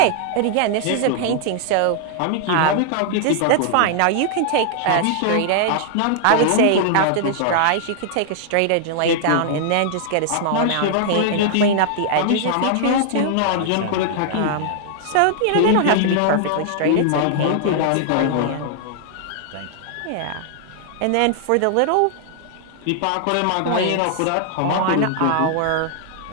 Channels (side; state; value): both; different; correlation 0.00